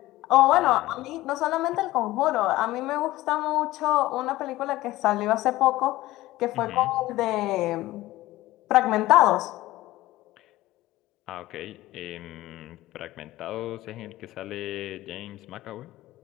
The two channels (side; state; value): right; quieter; 17.3 dB